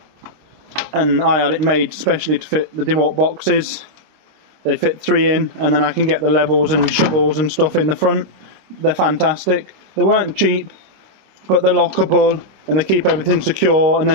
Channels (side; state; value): left; late; 26 ms